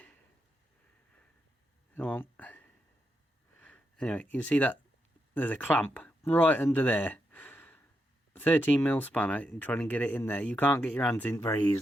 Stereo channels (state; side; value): normal; both; correlation 0.84